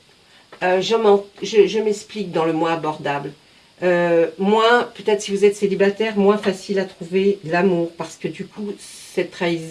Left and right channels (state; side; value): identical; both; correlation 1.00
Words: Je m'explique dans le moins abordable. Moins, peut-être si vous êtes célibataire, moins facile à trouver l'amour, parce que du coup, cette